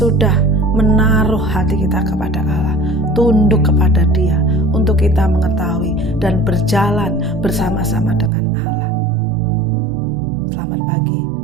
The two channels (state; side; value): drops out; left; at 8.3 s